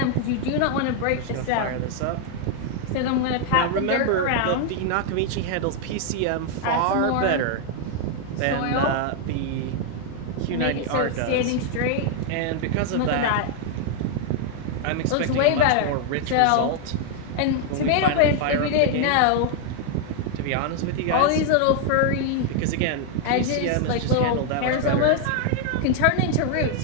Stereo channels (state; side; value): different; both; correlation 0.00